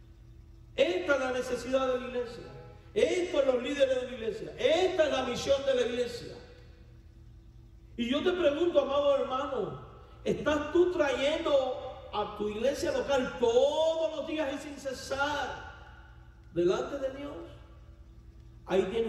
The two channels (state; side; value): identical; both; correlation 1.00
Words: Esta es la necesidad de la iglesia. Estos son los líderes de la iglesia. Esta es la misión de la iglesia. Y yo te pregunto, amado hermano, ¿estás tú trayendo a tu iglesia local todos los días y sin cesar delante de Dios? Ahí